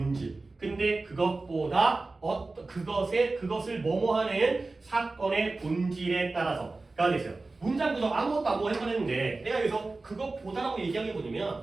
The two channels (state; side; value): quieter; left; 3.4 dB